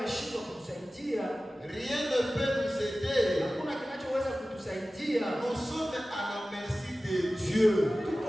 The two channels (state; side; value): normal; both; correlation 0.96